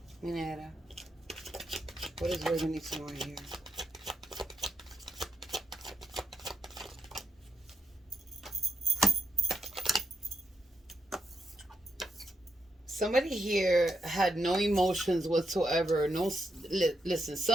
Mi negra, what does Virgo need to know here? Somebody here had no emotions whatsoever. No, listen.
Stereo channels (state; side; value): normal; both; correlation 0.83